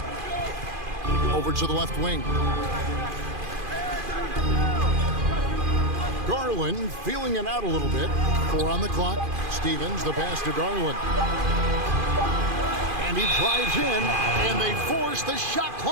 Over to the left wing. Garland feeling it out a little bit. 4 on the clock. Stevens, the pass to Garland. And he drives in, and they force the shot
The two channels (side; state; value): left; late; 2.5 ms